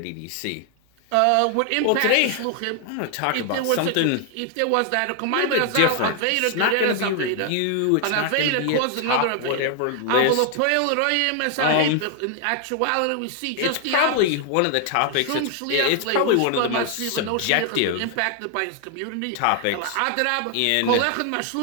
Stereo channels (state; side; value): different; both; correlation 0.00